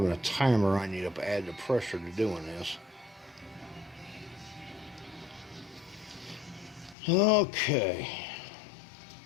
a timer on you to add the pressure to doing this. Okay.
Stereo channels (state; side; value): drops out; right; at 7.0 s